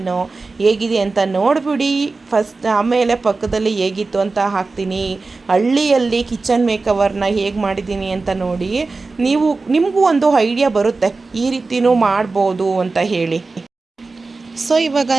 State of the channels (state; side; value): quieter; left; 3.8 dB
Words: ಹೇಗಿದೆ ಅಂತ ನೋಡಿಬಿಡಿ ಫಸ್ಟ್, ಆಮೇಲೆ ಪಕ್ಕದಲ್ಲಿ ಹೇಗಿತ್ತು ಅಂತ ಹಾಕ್ತೀನಿ. ಹಳ್ಳಿಯಲ್ಲಿ ಕಿಚನ್ ಮೇಕವರ್ನ ಹೇಗೆ ಮಾಡಿದ್ದೀನಿ ಅಂತ ನೋಡಿ, ನಿಮಗೂ ಒಂದು ಐಡಿಯಾ ಬರುತ್ತೆ ಈ ರೀತಿಯೂ ಮಾಡ್ಬೋದು ಅಂತ ಹೇಳಿ. ಸೊ ಇವಾಗ